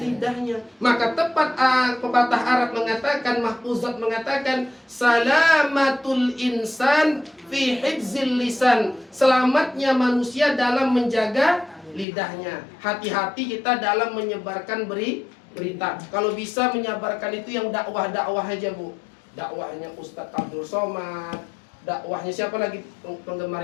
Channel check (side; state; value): right; drops out; at 12.1 s